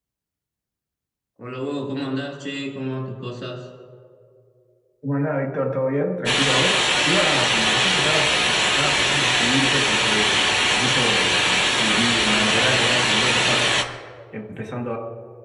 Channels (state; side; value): identical; both; correlation 1.00